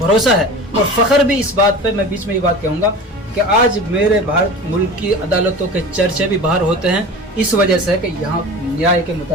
है। और फ़ख्र भी इस बात पे, मैं बीच में ये बात कहूँगा कि आज मेरे भारत मुल्क की अदालतों के चर्चे भी बाहर होते हैं इस वजह से कि यहाँ न्याय के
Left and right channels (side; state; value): both; normal; correlation 0.35